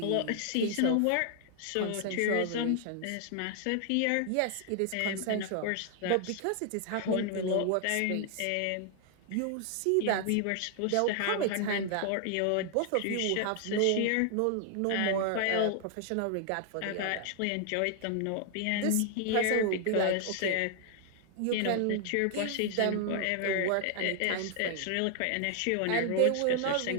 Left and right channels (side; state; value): both; different; correlation 0.00